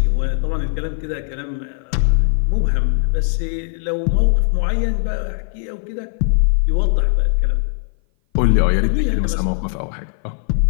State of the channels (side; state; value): right; silent; 57 dB below the other